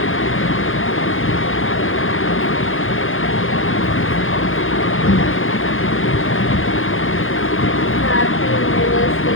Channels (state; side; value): late; right; 0.59 ms